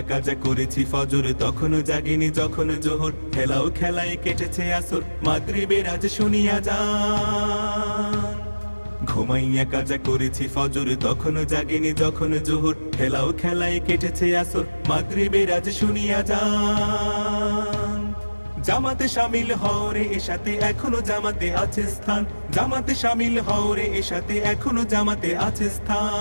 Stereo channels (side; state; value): both; inverted; correlation -1.00